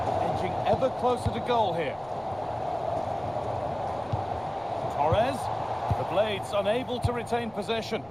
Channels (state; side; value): noise; left; rumble, 25 dB below the sound